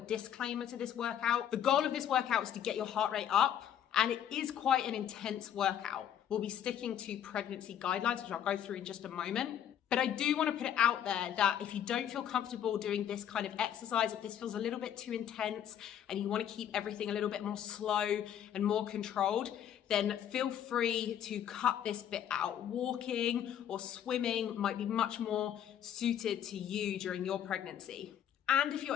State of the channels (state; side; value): quieter; right; 9.9 dB